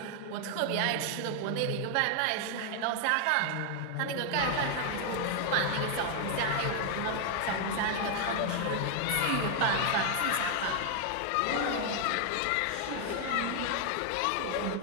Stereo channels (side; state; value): both; different; correlation 0.00